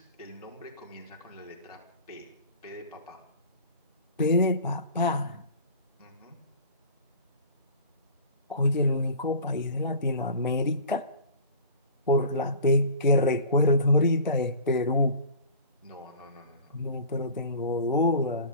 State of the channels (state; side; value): inverted; both; correlation -0.40